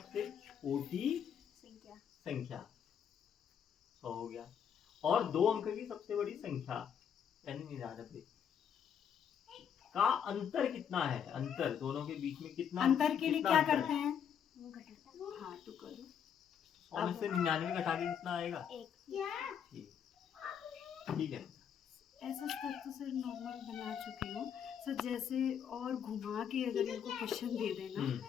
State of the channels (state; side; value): quieter; right; 8.2 dB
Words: छोटी संख्या 100 हो गया, और 2 अंक की सबसे बड़ी संख्या यानी 99 का अंतर कितना है? अंतर दोनों के बीच में कितना? अंतर के लिए कितना क्या अंतर करते है? हैं? हाँ तो करो। 100 में से 99 घटा के कितना आएगा? 1। ठीक है। ऐसा स्तर तो सर नॉर्मल बना चुके हो सर, जैसे और घुमा के अगर इनको क्वेश्चन दे देना